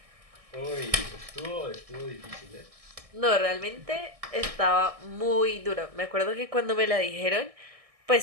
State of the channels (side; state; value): left; late; 1.6 ms